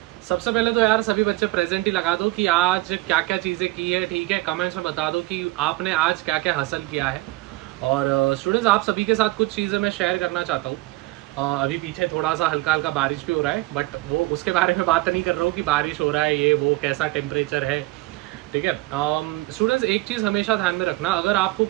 सबसे पहले तो यार सभी बच्चे प्रेजेंट ही लगा दो कि आज क्या क्या चीज़ें की है, ठीक है। कमेंट्स में बता दो कि आपने आज क्या क्या हासिल किया है। और स्टूडेंट्स, आप सभी के साथ कुछ चीज़ें मैं शेयर करना चाहता हूँ। अभी पीछे थोड़ा सा हल्का हल्का बारिश भी हो रहा है, बट वो उसके बारे में बात नहीं कर रहा हूँ कि बारिश हो रहा है, ये वो कैसा टेम्परेचर है, ठीक है। स्टूडेंट्स, एक चीज़ हमेशा ध्यान में रखना, अगर आपको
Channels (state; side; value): quieter; left; 19.9 dB